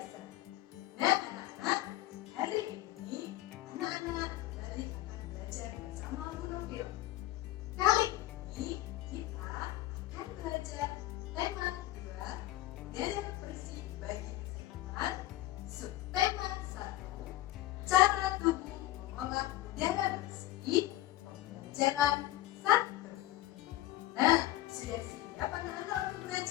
Nah anak-anak, hari ini anak-anak kembali akan belajar bersama Bu Nofil. Kali ini kita akan belajar tema 2, udara bersih bagi kesehatan, subtema 1, cara tubuh mengolah udara bersih, pembelajaran 1. Nah, sudah siap anak-anak untuk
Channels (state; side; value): quieter; right; 15.7 dB